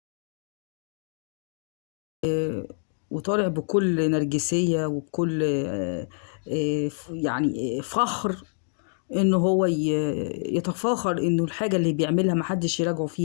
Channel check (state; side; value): silent; right; digital silence